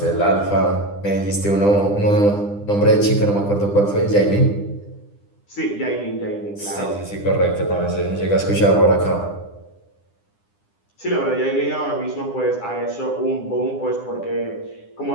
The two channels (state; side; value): late; right; 9.9 ms